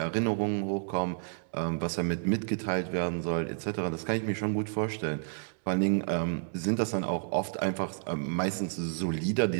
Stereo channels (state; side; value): silent; left; 57 dB below the other